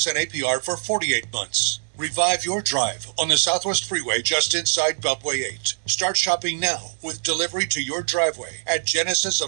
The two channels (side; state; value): left; silent; 63 dB below the other